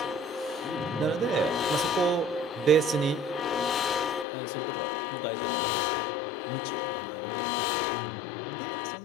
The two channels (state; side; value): drops out; right; at 4.2 s